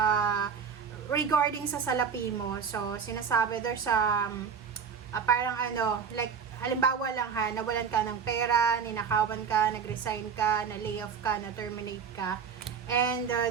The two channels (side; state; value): left; quieter; 6.6 dB